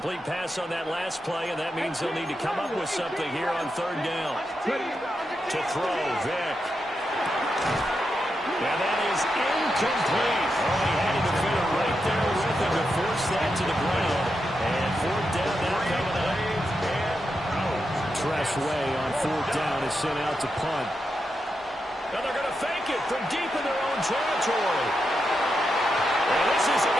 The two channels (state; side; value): normal; both; correlation 0.86